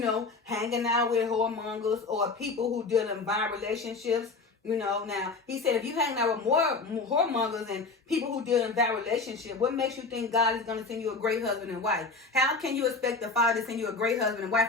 hanging out with whoremongers or people who deal in violent relationships. Now he said if you hang out with more whoremongers and people who deal in bad relationship, what makes you think God is going to send you a great husband and wife? How can you expect the Father to send you a great husband and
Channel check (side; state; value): right; quieter; 3.9 dB